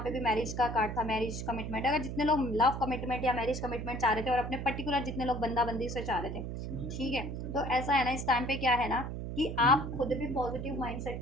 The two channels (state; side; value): noise; right; hum, 5 dB below the sound